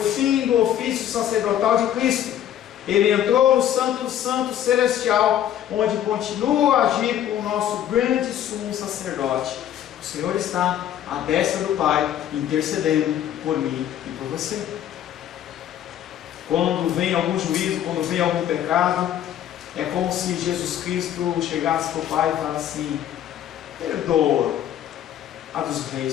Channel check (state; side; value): quieter; right; 10.8 dB